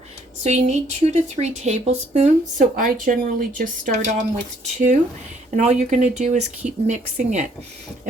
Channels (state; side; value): normal; both; correlation 0.65